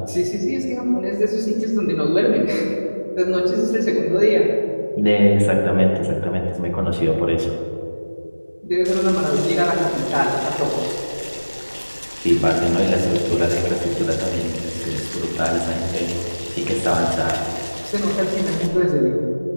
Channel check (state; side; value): inverted; both; correlation -1.00